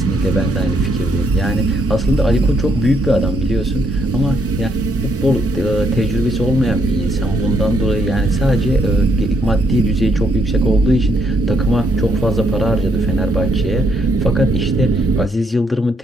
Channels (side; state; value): both; normal; correlation 0.73